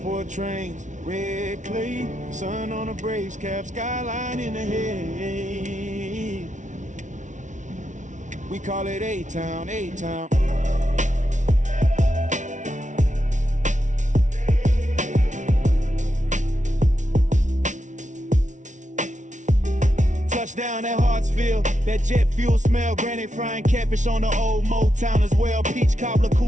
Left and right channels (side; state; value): left; late; 0.36 ms